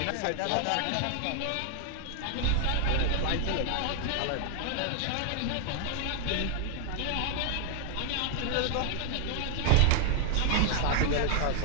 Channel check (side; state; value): both; different; correlation 0.00